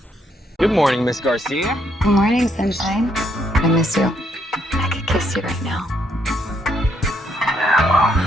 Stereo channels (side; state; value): both; normal; correlation 0.73